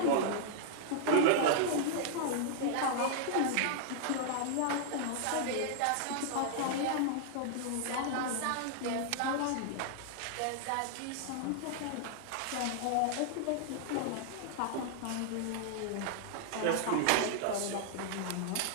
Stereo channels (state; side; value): different; both; correlation -0.01